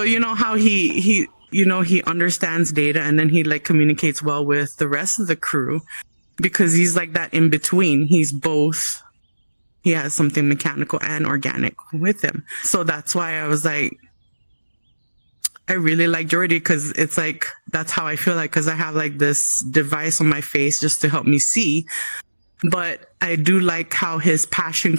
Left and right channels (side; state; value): both; inverted; correlation -1.00